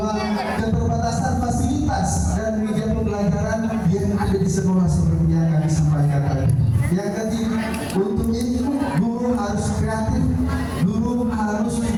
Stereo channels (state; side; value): identical; both; correlation 1.00